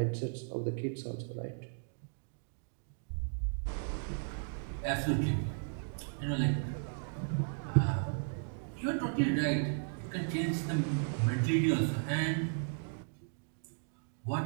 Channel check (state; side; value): silent; left; digital silence